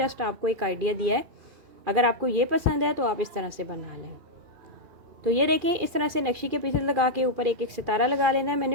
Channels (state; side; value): late; left; 2.4 ms